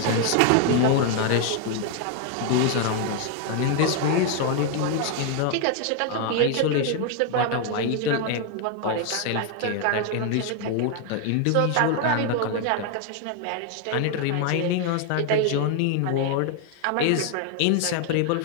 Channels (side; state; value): both; different; correlation 0.00